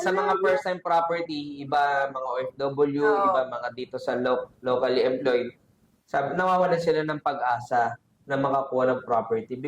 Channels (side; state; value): both; identical; correlation 1.00